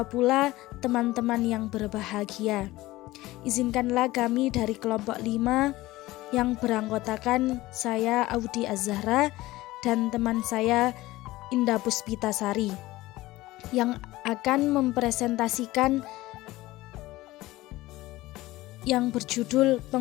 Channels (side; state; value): right; quieter; 18.1 dB